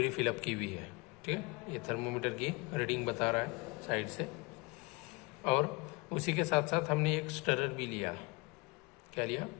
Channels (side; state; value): right; quieter; 26.7 dB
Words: फिलअप की हुई है, ठीक है, ये थर्मोमीटर की रीडिंग बता रहा है साइड से। और उसी के साथ साथ हमने एक स्टरर भी लिया। क्या लिया?